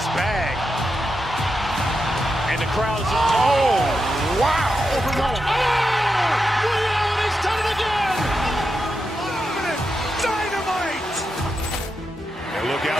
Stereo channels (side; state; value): both; normal; correlation 0.87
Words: bag. And the crowd's, oh, wow. He's done it again. Dynamite. And look